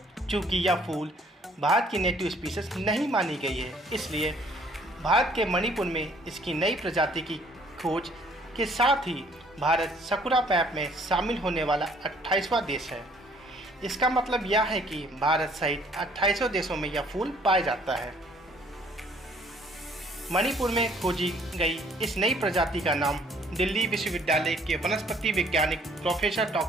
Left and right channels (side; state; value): both; normal; correlation 0.60